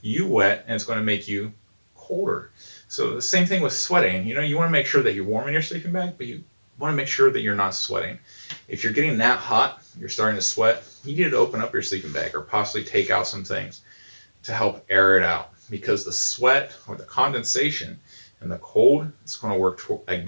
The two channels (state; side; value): inverted; both; correlation -1.00